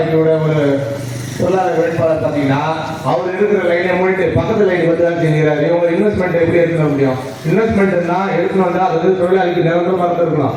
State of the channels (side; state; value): both; identical; correlation 1.00